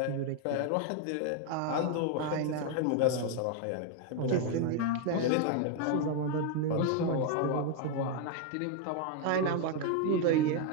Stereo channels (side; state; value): both; different; correlation 0.00